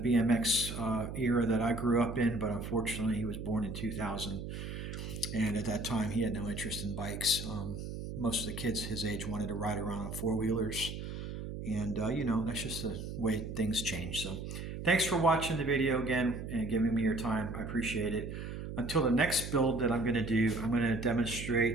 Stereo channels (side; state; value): right; noise; hum, 7 dB below the sound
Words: era that I grew up in, but unfortunately he was born in 2000. And at that time he had no interest in bikes. Most of the kids his age wanted to ride around on four-wheelers. And, that's just the way things change. So thanks for watching the video again and giving me your time. I appreciate it. Until the next build that I'm going to do, I'm going to